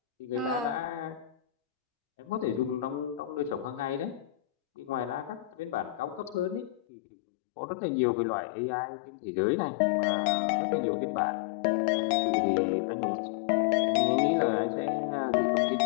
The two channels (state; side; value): drops out; right; at 6.8 s